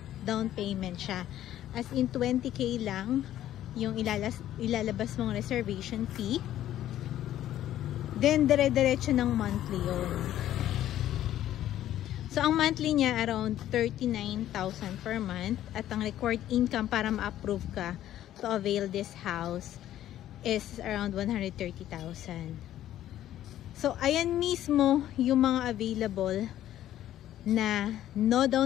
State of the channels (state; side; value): quieter; right; 12.5 dB